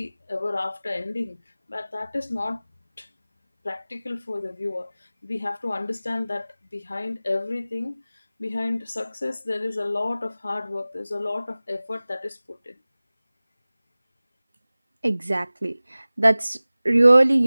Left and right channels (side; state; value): both; inverted; correlation -0.98